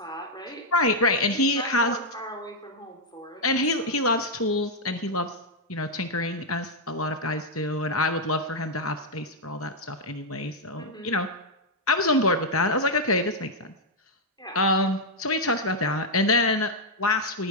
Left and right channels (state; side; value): normal; both; correlation -0.02